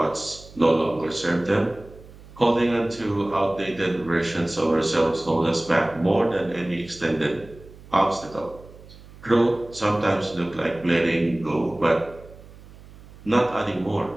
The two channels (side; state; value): right; noise; hum, 20 dB below the sound